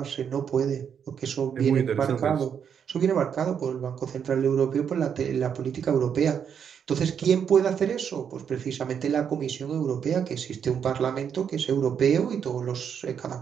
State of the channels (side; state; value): left; quieter; 7.7 dB